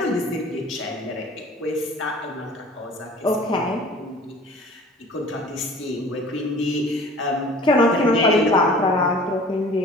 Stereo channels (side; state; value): both; normal; correlation 0.47